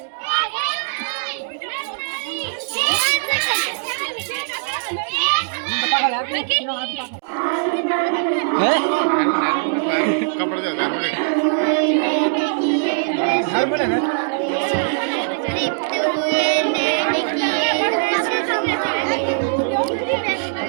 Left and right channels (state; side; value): silent; left; digital silence